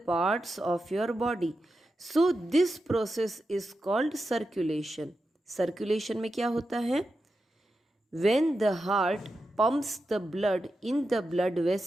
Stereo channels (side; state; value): both; normal; correlation 0.89